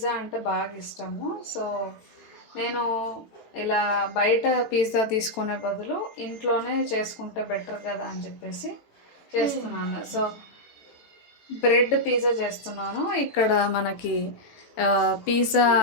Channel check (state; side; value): late; right; 18 ms